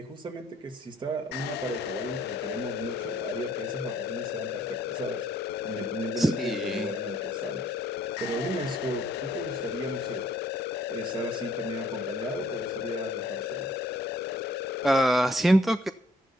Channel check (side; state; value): both; normal; correlation 0.62